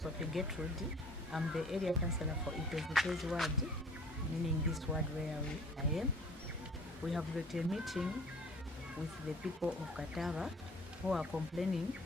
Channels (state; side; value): normal; both; correlation 0.50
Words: Gertrude. I'm the area councillor for Itezhi Tezhi ward, meaning this ward where I am. We have got a meeting with the people of Katava who are complaining